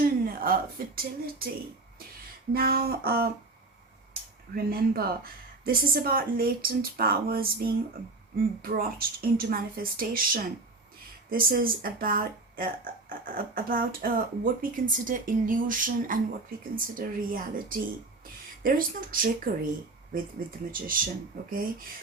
fertility. Now remember, this is about latent powers being brought into manifestation. This is about what we consider illusion and what we consider reality. There is no trickery with the magician, okay?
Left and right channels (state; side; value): quieter; left; 3.4 dB